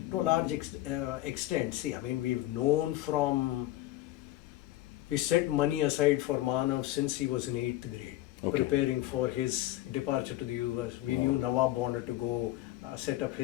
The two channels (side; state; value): right; quieter; 15.8 dB